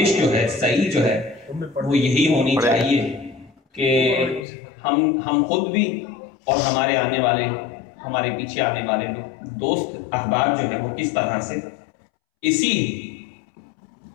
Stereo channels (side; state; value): right; drops out; at 4.5 s